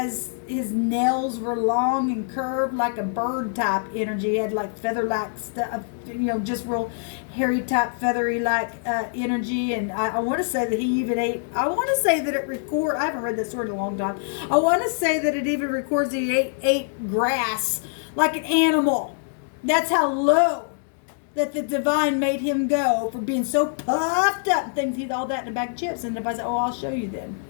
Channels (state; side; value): silent; right; digital silence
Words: his nails were long and curved like a bird type energy. He had like feather-like stuff, you know, just real hairy type, feathery like energy. And I want to say that he even ate, I want to say that it I haven't read this story in a long time. I want to say that it even records that he ate grass like an animal. That's how low that the divine made him go for being so puffed up and things. He'd all that in a bag of chips. And if I said, oh, I'll show you then.